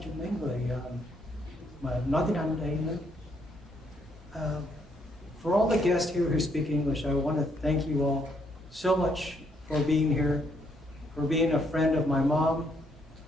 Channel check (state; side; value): normal; both; correlation 0.72